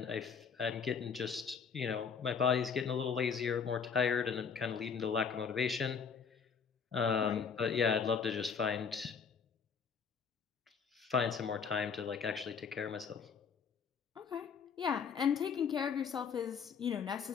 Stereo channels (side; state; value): right; quieter; 6.3 dB